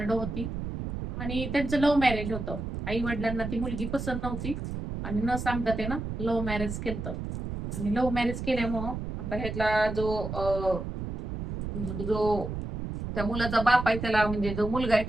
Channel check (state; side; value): noise; right; rumble, 5 dB below the sound